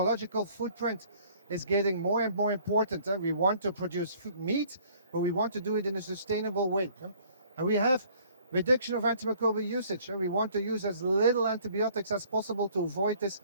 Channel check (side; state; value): both; inverted; correlation -0.57